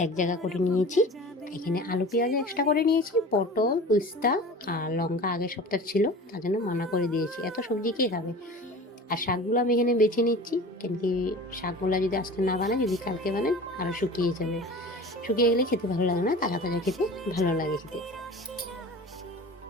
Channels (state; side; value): normal; both; correlation 0.38